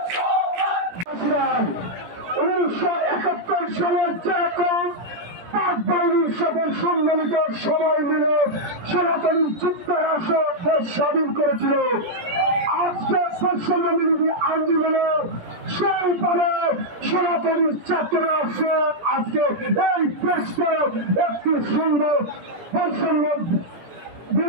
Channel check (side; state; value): left; late; 17 ms